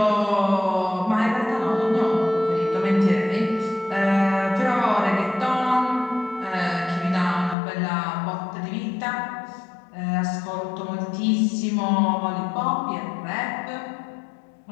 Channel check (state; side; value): drops out; right; at 7.6 s